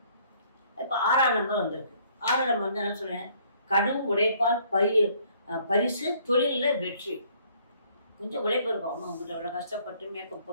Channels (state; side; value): inverted; both; correlation -0.62